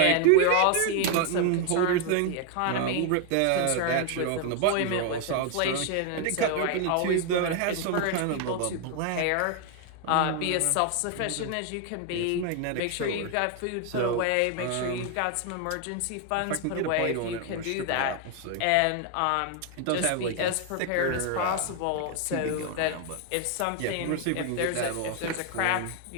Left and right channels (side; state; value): both; different; correlation 0.01